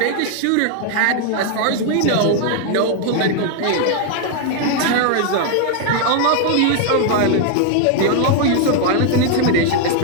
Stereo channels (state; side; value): different; both; correlation 0.00